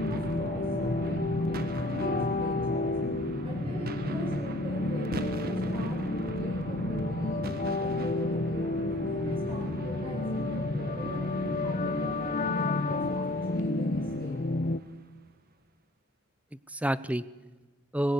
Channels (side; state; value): both; normal; correlation 0.55